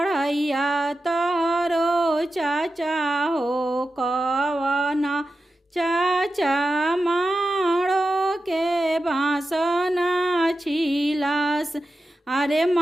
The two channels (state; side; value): normal; both; correlation 0.92